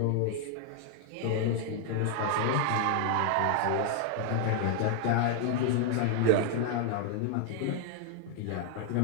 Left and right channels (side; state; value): both; different; correlation 0.00